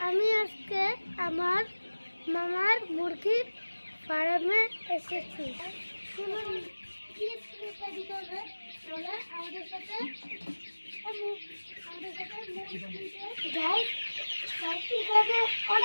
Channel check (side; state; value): both; inverted; correlation -1.00